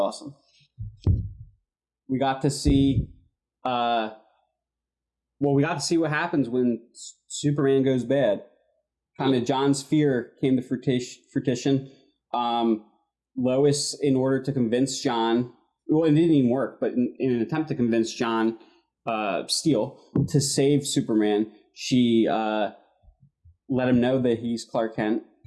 We got to see we got to see what happens when Superman goes bad. Kind of John's fear came to fruition. Lois, in order to convince John, well, it didn't even work, but in an attempt to convince John Steele to save Superman, she let him know that he's Clark Kent,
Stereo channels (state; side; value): identical; both; correlation 1.00